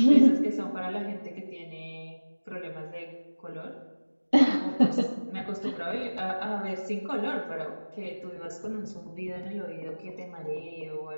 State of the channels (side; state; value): both; inverted; correlation -1.00